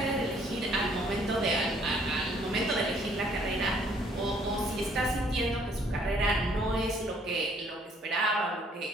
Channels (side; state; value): both; normal; correlation 0.63